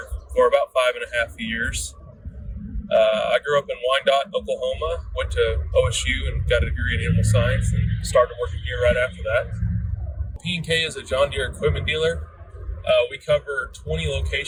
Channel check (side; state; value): both; identical; correlation 1.00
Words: for about 5.5 years. I grew up in Wyandotte, Oklahoma, went to OSU and got a degree in animal science and started working here right after that. P&K is a John Deere equipment dealer. We cover 20